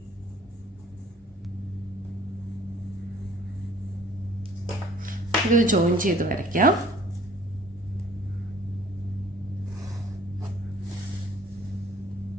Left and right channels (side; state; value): both; normal; correlation 0.54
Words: ഇത് ജോയിൻ ചെയ്ത് വരയ്ക്കാം.